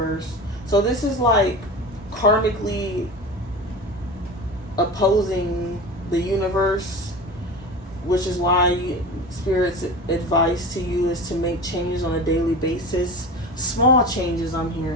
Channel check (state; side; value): normal; both; correlation 0.31